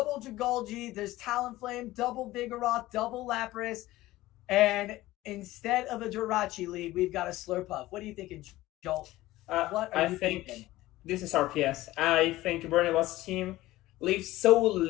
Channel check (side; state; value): right; quieter; 17.1 dB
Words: Dragolgi. There's Talonflame, double Vigoroth, double Lapras. And instead of a Jirachi lead, we've got a Slurpuff. What are you thinking, Joel? What are you thinking? This is RPS. I think Burnibus' team leaves so